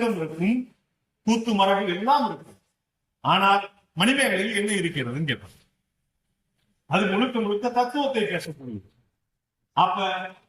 இருக்கும், கூத்து மரபு எல்லாம் இருக்கும். ஆனால் மணிமேகலையில் என்ன இருக்கிறதுன்னு கேட்பாங்க. அது முழுக்க முழுக்க தத்துவத்தை பேசக்கூடியது. அப்ப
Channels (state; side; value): identical; both; correlation 1.00